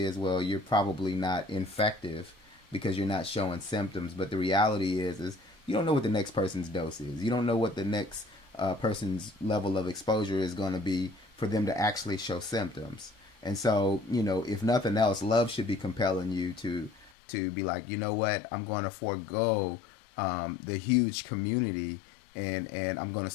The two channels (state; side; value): drops out; right; at 17.1 s